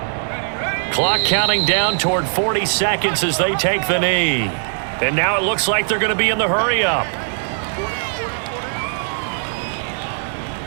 Clock counting down toward 40 seconds as they take the knee. And now it looks like they're going to be in the hurry-up.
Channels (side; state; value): left; silent; digital silence